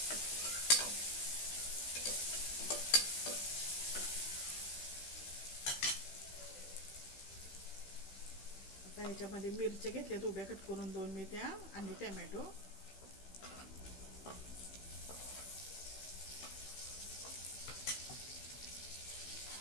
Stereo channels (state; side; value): late; right; 16 ms